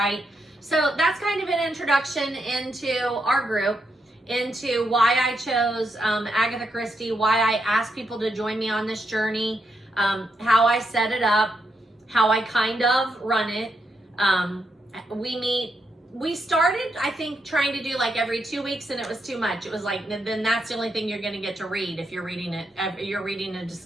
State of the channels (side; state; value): both; normal; correlation 0.82